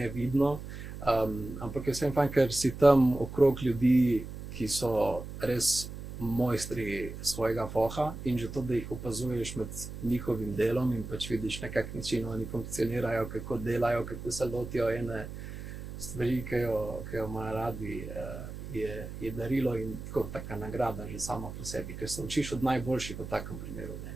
ampak je vsem fajn, ker si tam okrog ljudi, ki so res mojstri svojega foha, in že to, da jih opazuješ med njihovim delom in pač vidiš, na kak način oni funkcionirajo, kako delajo, kako se lotijo ene stvari, ki jo imajo radi, je darilo in tako taka nagrada že sama po sebi, ker se učiš od najboljših v takem primeru,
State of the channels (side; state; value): right; noise; hum, 10 dB below the sound